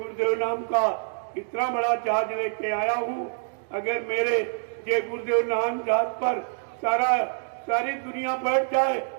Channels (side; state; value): left; silent; digital silence